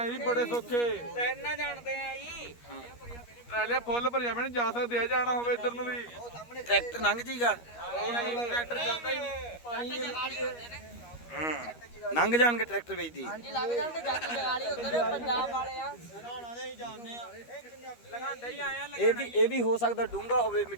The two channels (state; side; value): late; right; 13 ms